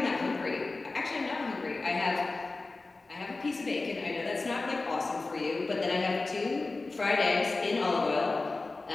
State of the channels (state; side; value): quieter; right; 3.5 dB